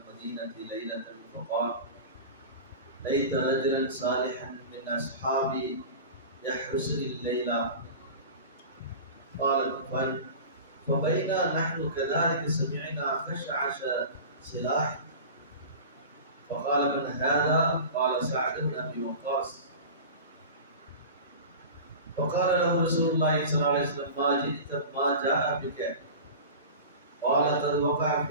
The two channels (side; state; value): both; inverted; correlation -0.33